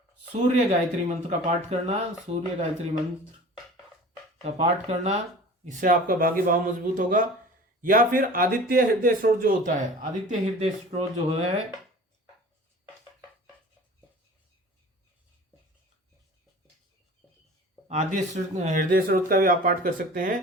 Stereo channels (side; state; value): both; normal; correlation 0.42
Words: सूर्य गायत्री मंत्र का पाठ करना, सूर्य गायत्री मंत्र का पाठ करना, इससे आपका भाग्य भाव मजबूत होगा। या फिर आदित्य हृदय स्त्रोत जो होता है, आदित्य हृदय स्त्रोत जो है, आदित्य हृदय स्त्रोत का भी आप पाठ कर सकते